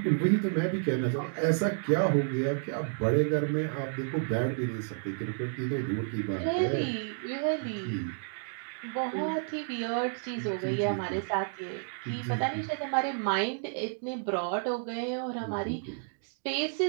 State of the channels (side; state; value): left; silent; digital silence